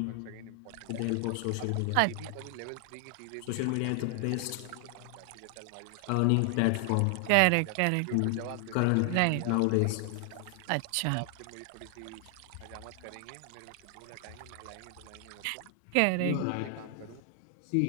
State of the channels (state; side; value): different; both; correlation 0.00